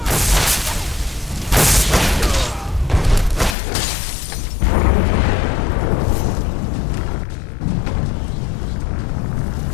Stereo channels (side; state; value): right; drops out; at 3.6 s